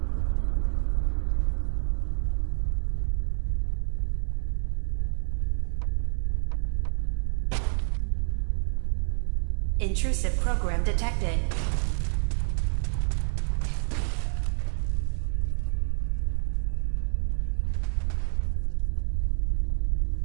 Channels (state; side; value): silent; left; 56 dB below the other